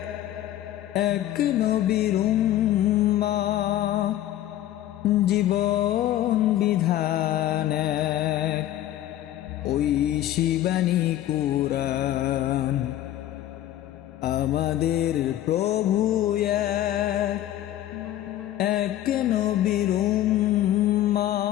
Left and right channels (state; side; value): quieter; right; 13.1 dB